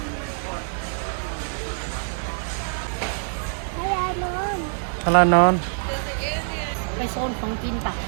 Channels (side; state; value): left; silent; digital silence